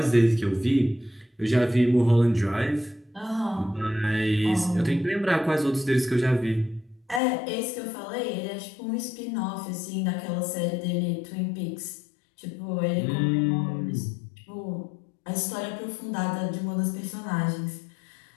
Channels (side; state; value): right; drops out; at 7.2 s